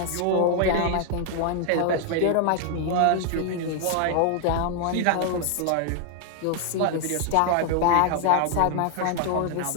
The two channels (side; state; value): both; different; correlation 0.00